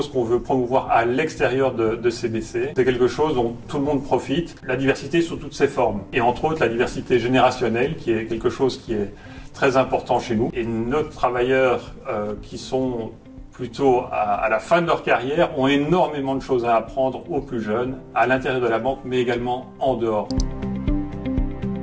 qu'on veut promouvoir à l'extérieur de CBC. C'est quelque chose dont tout le monde profite, la diversité sous toutes ses formes. Et entre autres, la diversité générationnelle, qui est quelque chose qui est très important chez nous. Et nos travailleurs qui sont plutôt à la fin de leur carrière, ont énormément de choses à apprendre aux plus jeunes, à l'intérieur de la banque, mais également en dehors.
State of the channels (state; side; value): identical; both; correlation 1.00